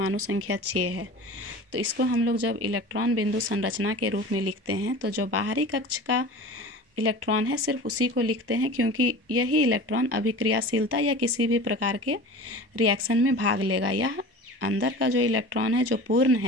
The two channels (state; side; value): late; left; 1.1 ms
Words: संख्या 6 है। तो इसको हम लोग जब इलेक्ट्रॉन बिंदु संरचना के रूप में लिखते हैं तो जो बाहरी कक्ष का इलेक्ट्रॉन है सिर्फ उसी को लिखते हैं, क्योंकि यही इलेक्ट्रॉन अभिक्रियाशीलता या किसी भी प्रकार के रिएक्शन में भाग लेगा। यह अंदर का जो इलेक्ट्रॉन है जो पूर्ण